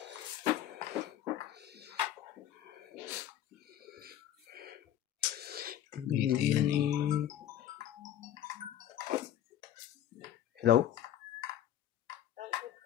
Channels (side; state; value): right; quieter; 11.5 dB